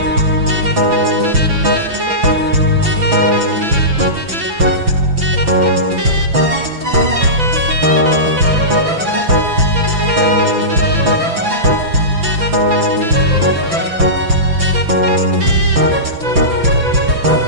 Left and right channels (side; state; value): left; late; 5.9 ms